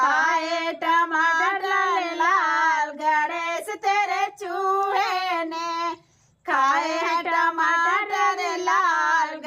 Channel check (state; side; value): identical; both; correlation 1.00